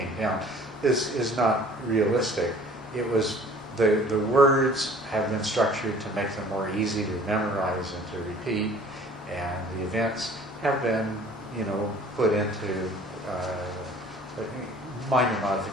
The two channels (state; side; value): normal; both; correlation 0.50